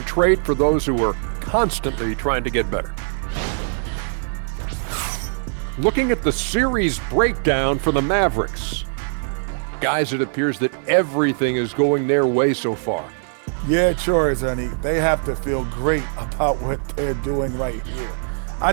trait for those who are constantly trying to get better. Looking at the series breakdown for the Mavericks. Guys, it appears that everything is going their way so far. Yeah, it sure is, honey. They have to feel great about what they're doing right here. I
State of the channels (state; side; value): silent; left; digital silence